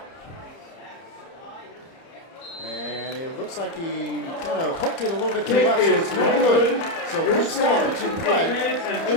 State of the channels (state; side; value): late; right; 30 ms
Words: And it looks like he kind of hooked it a little bit to the left, so it's no good. So quick stoppage in play.